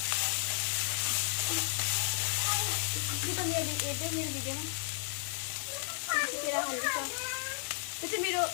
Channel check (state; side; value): silent; right; 55 dB below the other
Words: त्यो मेरो हेर्दै मेरो भिडियोमा तेरा हाल्दैछ। त्यो चाहिँ मेरो